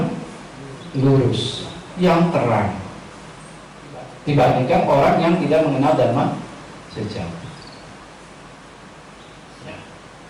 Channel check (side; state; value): both; identical; correlation 1.00